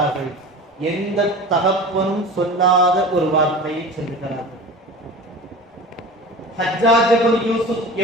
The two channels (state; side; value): normal; both; correlation 0.36